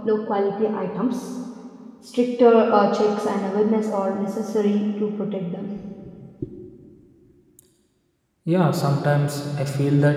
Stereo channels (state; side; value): identical; both; correlation 1.00